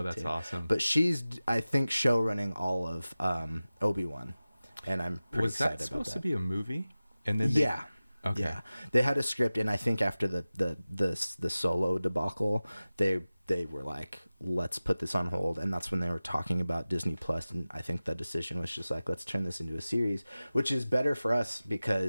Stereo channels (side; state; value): both; inverted; correlation -0.96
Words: that's awesome. But she's, I think, show running all of Obi-Wan. And I'm pretty excited about that. Was that supposed to be a movie? And then Yeah. Okay. Yeah. They had a script, and I think after the Solo debacle, they were like, let's put this on hold. And that's when they were talking about Disney Plus. And I think the decision was just like, let's turn this into a series, which is better for us